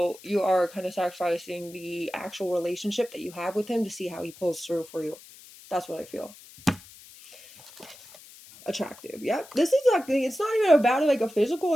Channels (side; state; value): left; noise; hiss, 20 dB below the sound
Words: you are kind of sacrificing the actual relationship that you have with him to see how he pulls through for you. That's what I feel. Attractive. Yep. This is like, it's not even about like a physical